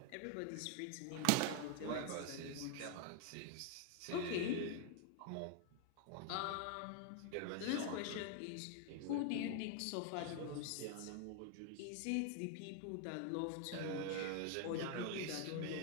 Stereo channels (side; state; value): both; different; correlation 0.01